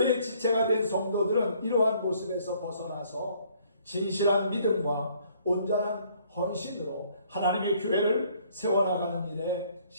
지체가 된 성도들은 이러한 모습에서 벗어나서 진실한 믿음과 온전한 헌신으로 하나님의 교회를 세워나가는 일에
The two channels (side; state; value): both; inverted; correlation -0.63